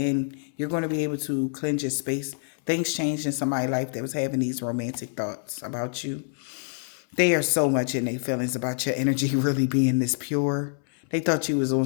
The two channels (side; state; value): right; silent; 61 dB below the other